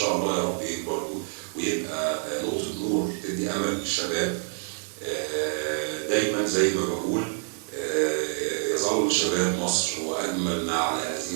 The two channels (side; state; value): left; silent; 60 dB below the other